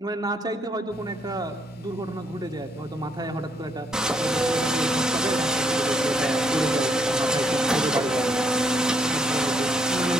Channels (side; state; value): both; normal; correlation 0.71